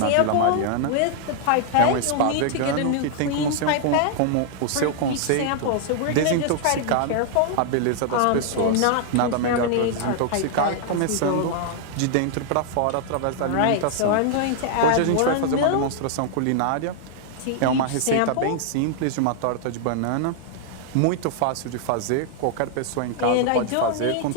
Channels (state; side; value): different; both; correlation -0.01